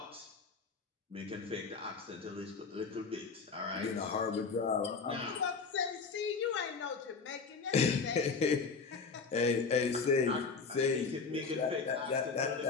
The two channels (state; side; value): quieter; right; 4.9 dB